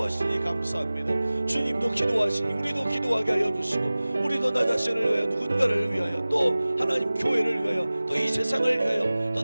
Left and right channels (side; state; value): both; inverted; correlation -0.98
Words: 감사합니다. 주님도 기도하시니 우리도 기도하게 하여 주시고 우리도 나 자신을 위하여 누군가를 위하여 또 하나님 교회를 위하여 또 이 세상을 위하여 또